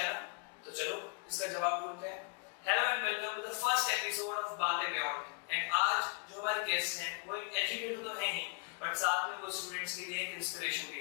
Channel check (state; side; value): quieter; right; 39.7 dB